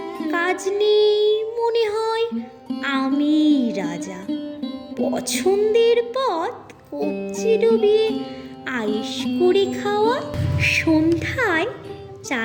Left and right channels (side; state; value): both; identical; correlation 1.00